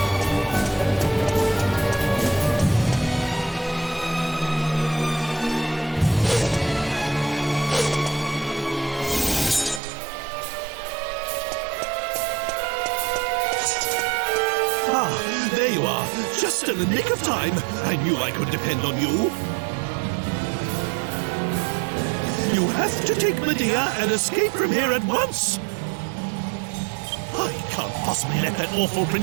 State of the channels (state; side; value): drops out; left; at 9.8 s